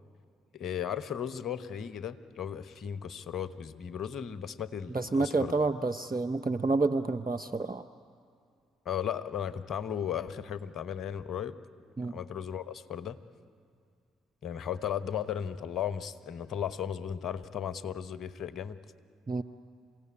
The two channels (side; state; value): both; normal; correlation 0.63